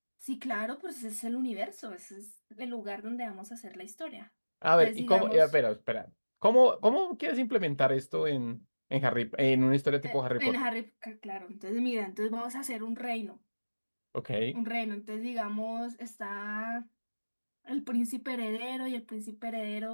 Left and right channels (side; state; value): both; inverted; correlation -1.00